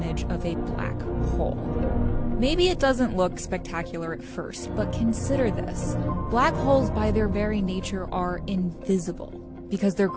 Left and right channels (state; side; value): identical; both; correlation 1.00